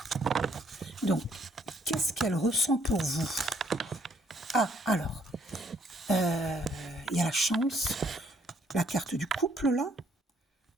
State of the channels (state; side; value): normal; both; correlation 0.67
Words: Donc, qu'est-ce qu'elle ressent pour vous? Ah, alors, il y a la chance, la carte du couple, là.